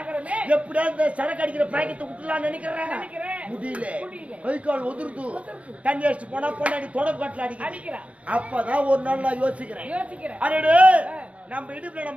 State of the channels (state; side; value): late; left; 0.064 ms